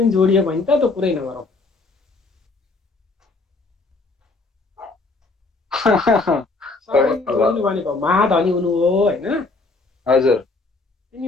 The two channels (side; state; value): right; quieter; 3.6 dB